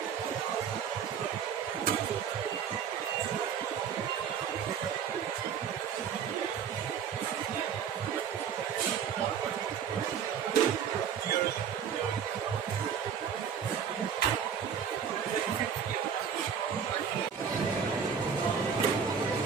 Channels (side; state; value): left; quieter; 7.6 dB